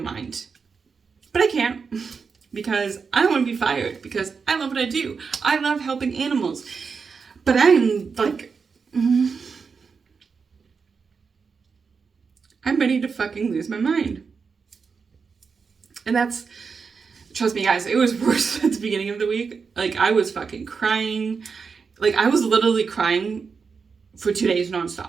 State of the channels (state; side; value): quieter; left; 5.4 dB